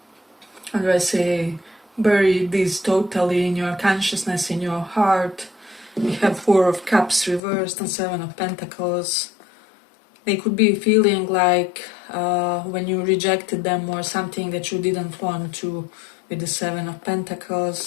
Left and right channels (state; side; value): drops out; right; at 7.4 s